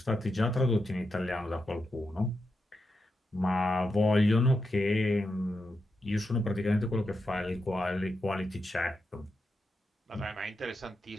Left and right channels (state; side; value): normal; both; correlation 0.86